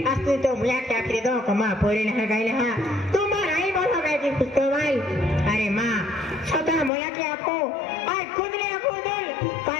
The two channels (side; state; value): right; drops out; at 6.9 s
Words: असली तो मुझे क्या करे दो कमा पोरे नहीं गाइले हां तुम्हारा ही बोलो गए कि कुछ तो भाई अरे मां छोटा मोया के आपको आज खुद ने आपको दल